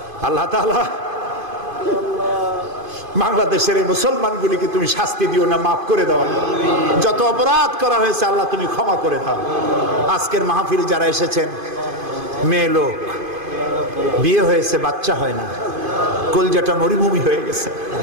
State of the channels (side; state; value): left; late; 2.5 ms